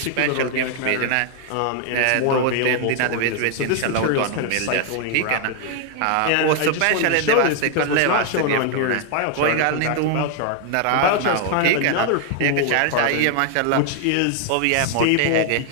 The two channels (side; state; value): both; different; correlation 0.00